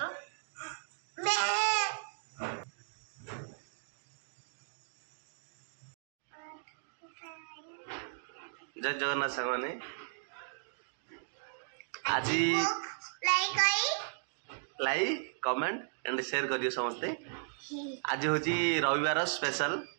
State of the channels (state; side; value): silent; left; digital silence